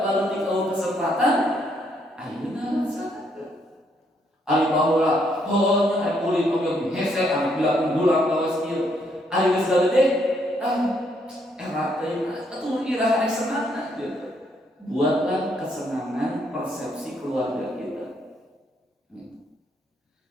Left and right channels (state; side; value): normal; both; correlation 0.72